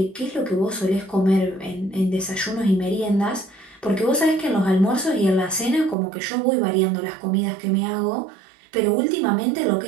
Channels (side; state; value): left; drops out; at 6.0 s